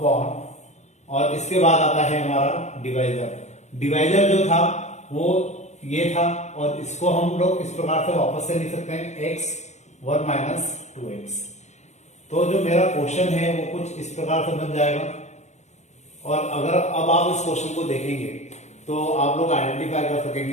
और इसके बाद आता है हमारा डिवाइजर। डिवाइजर जो था वो ये था और इसको हम लोग इस प्रकार से वापस से लिख सकते हैं x 1 माइनस 2x। तो जो मेरा क्वेश्चन है वो कुछ इस प्रकार से बन जाएगा और अगर अब आप इस क्वेश्चन को देखेंगे तो आप लोग आइडेंटिफाई कर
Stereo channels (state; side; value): late; right; 0.33 ms